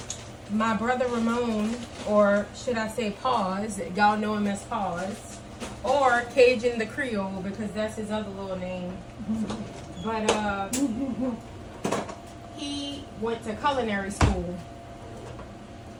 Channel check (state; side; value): identical; both; correlation 1.00